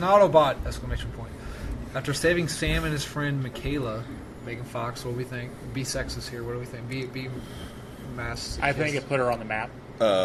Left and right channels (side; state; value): both; identical; correlation 1.00